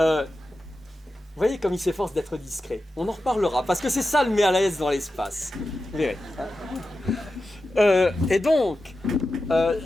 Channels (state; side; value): normal; both; correlation 0.92